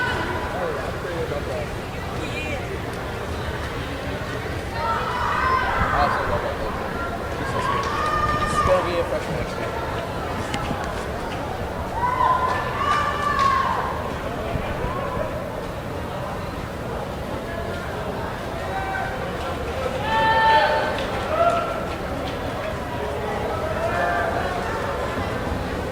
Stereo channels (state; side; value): identical; both; correlation 1.00